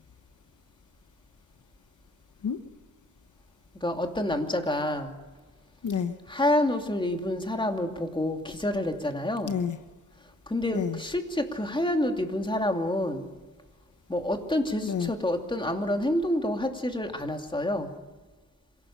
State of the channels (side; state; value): both; normal; correlation 0.65